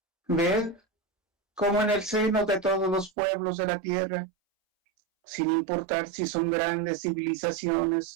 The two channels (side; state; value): left; drops out; at 3.1 s